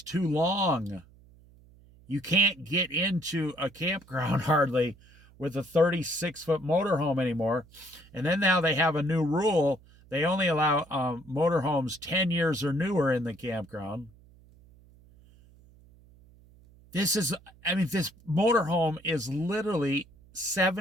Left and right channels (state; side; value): noise; right; hum, 26 dB below the sound